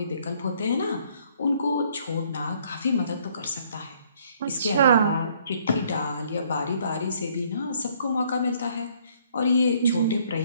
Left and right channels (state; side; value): inverted; both; correlation -0.64